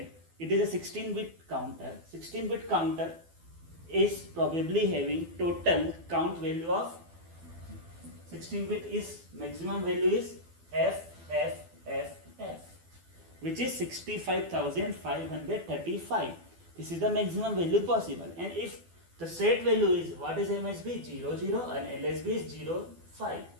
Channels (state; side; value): late; left; 12 ms